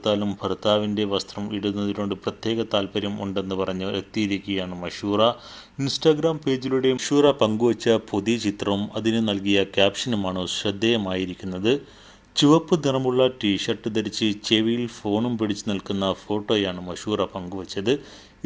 ഭർത്താവിൻ്റെ വസ്ത്രം ഇടുന്നതിനോട് പ്രത്യേക താല്പര്യം ഉണ്ടെന്ന് പറഞ്ഞ് എത്തിയിരിക്കുകയാണ് മഷൂറ. ഇൻസ്റ്റാഗ്രാം പേജിലൂടെ മഷൂറ പങ്കുവച്ച പുതിയ ചിത്രവും അതിന് നൽകിയ ക്യാപ്ഷനുമാണ് ശ്രദ്ധേയമായിരിക്കുന്നത്. ചുവപ്പ് നിറമുള്ള ടീഷർട്ട് ധരിച്ച് ചെവിയിൽ ഫോണും പിടിച്ചു നിൽക്കുന്ന ഫോട്ടോയാണ് മഷൂറ പങ്കുവച്ചത്.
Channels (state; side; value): identical; both; correlation 1.00